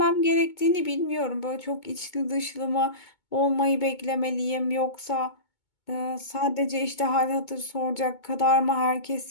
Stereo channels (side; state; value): right; late; 2.2 ms